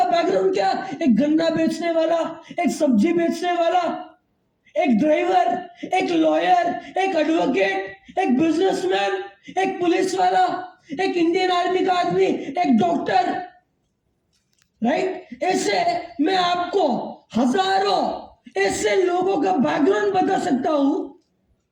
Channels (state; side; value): identical; both; correlation 1.00